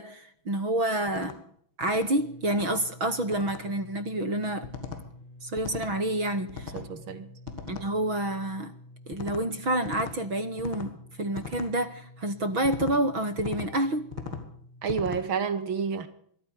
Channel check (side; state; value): left; late; 6.2 ms